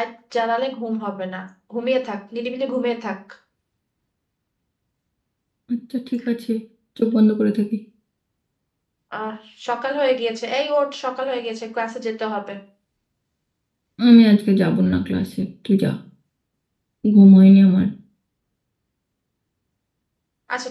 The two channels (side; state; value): both; identical; correlation 1.00